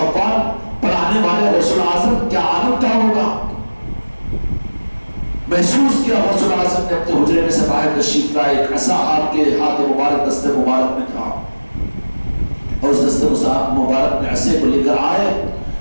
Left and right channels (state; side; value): inverted; both; correlation -1.00